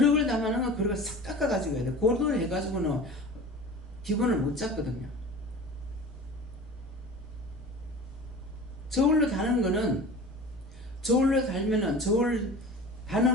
담아는 건 그릇을 싹 깎아가지고 해야 돼. 고르도를 해가지고는 기본을 못 잡거든요. 저울로 다는 거는, 저울로 달면은, 저울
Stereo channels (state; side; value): normal; both; correlation 0.38